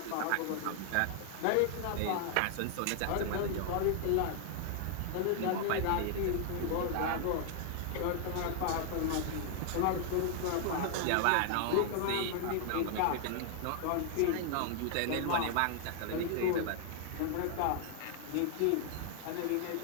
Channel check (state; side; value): different; both; correlation 0.00